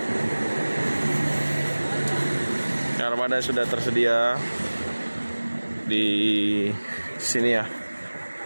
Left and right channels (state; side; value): inverted; both; correlation -1.00